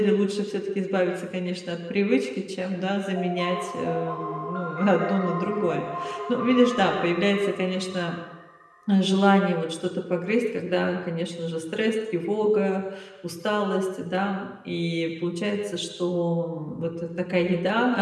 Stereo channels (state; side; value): identical; both; correlation 1.00